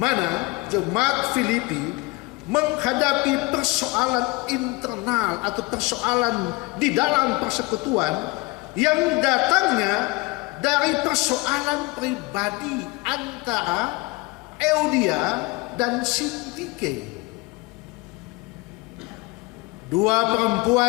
jemaat Filipi menghadapi persoalan internal atau persoalan di dalam persekutuan yang datangnya dari persoalan pribadi antara Euodia dan Sintike. Dua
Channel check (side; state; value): right; quieter; 24.9 dB